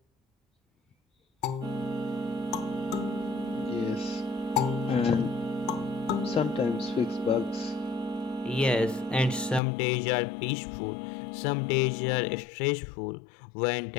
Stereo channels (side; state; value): right; drops out; at 9.6 s